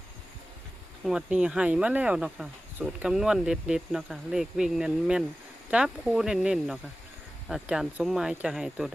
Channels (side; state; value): both; normal; correlation 0.96